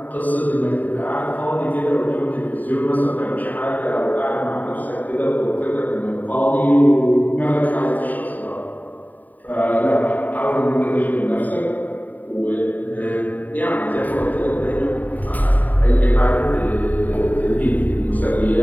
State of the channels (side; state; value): right; late; 0.082 ms